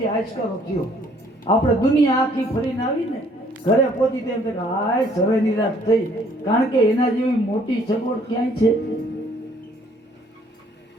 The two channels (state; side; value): normal; both; correlation 0.61